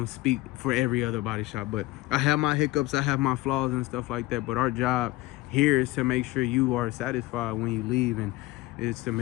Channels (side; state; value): right; quieter; 19.1 dB